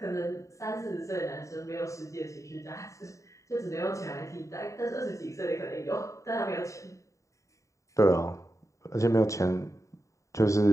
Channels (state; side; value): late; right; 0.15 ms